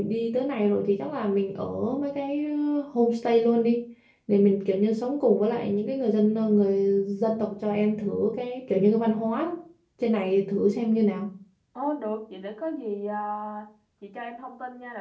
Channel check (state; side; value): identical; both; correlation 1.00